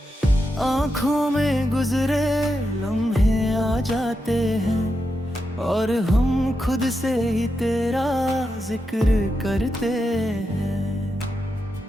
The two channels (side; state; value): both; normal; correlation 0.87